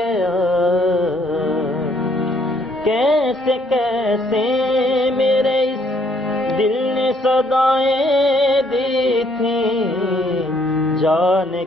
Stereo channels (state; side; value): normal; both; correlation 0.66